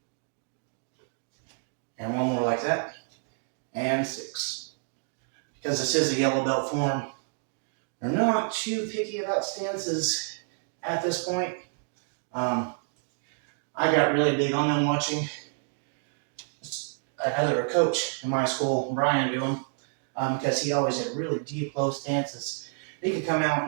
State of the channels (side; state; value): left; silent; 59 dB below the other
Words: And 1 more like that. And 6. Because this is a yellow belt form, they're not too picky about stances at this point. I got really big on them watching another coach in my school, Brian, do them, because he always had really deep, low stances. He could come out